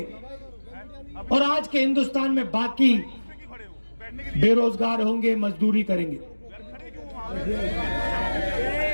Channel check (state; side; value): inverted; both; correlation -1.00